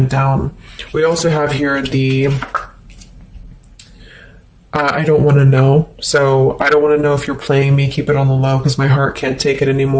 down. We also have here the I don't want to know. So I don't want to know if you're playing me. Keep it on the low because my heart can't take it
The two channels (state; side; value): identical; both; correlation 1.00